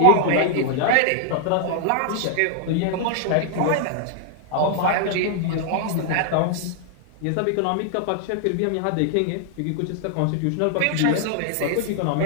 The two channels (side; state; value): both; different; correlation 0.00